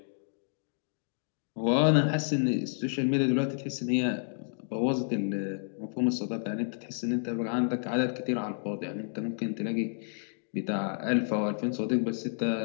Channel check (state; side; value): silent; right; digital silence